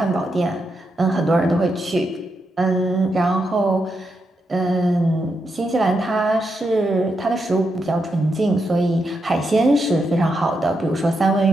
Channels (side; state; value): both; normal; correlation 0.84